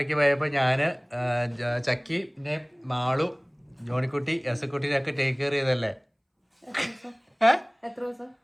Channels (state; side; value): identical; both; correlation 1.00